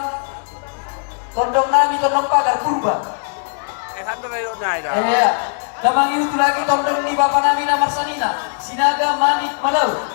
Tondong nami tondong pagar purba. Iya. Damang itu lagi tondong di bapak nami namar sanina. Sinaga manik malau.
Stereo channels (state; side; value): silent; right; 67 dB below the other